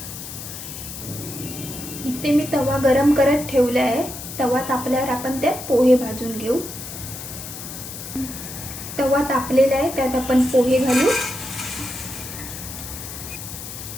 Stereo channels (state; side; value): noise; left; hiss, 10 dB below the sound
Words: इथे मी तवा गरम करत ठेवला आहे. तवा तापल्यावर आपण त्यात पोहे भाजून घेऊ. तवा तापलेला आहे, त्यात आपण पोहे घालू